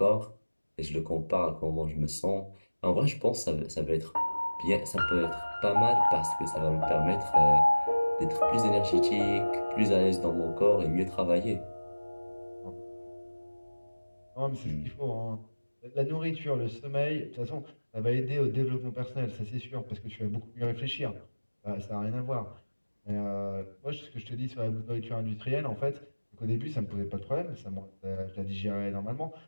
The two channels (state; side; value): inverted; both; correlation -1.00